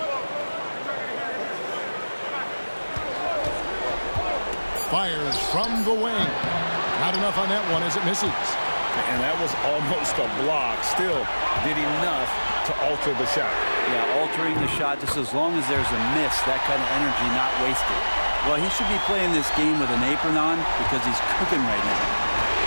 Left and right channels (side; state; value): both; inverted; correlation -1.00